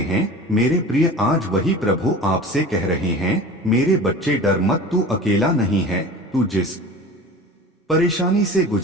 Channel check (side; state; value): both; normal; correlation 0.37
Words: हैं? मेरे प्रिय, आज वही प्रभु आपसे कह रहे हैं, मेरे बच्चे डर मत, तू अकेला नहीं है। तू जिस परेशानी से